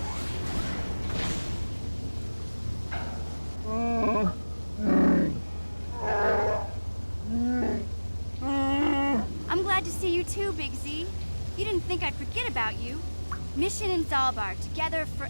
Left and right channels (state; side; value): inverted; both; correlation -1.00